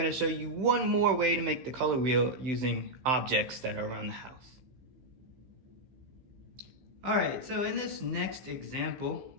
show you one more way to make the color wheel using objects that are around the house. All right, so in this next example,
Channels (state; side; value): late; left; 16 ms